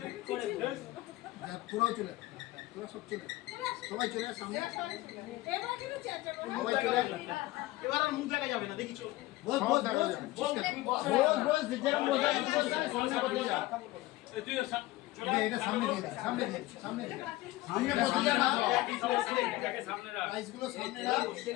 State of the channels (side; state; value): right; quieter; 18.4 dB